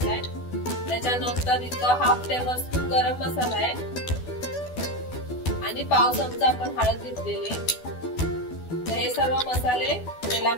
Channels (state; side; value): late; right; 12 ms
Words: त्याच्यानंतर इथं हाफ टेबलस्पून गरम मसाला आहे आणि पाव चमचा आपण हळद घेतलेली आहे। तर हे सर्व मसाले